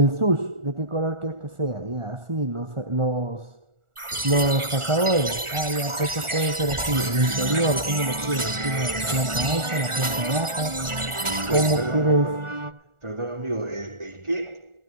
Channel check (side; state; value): left; late; 1.4 ms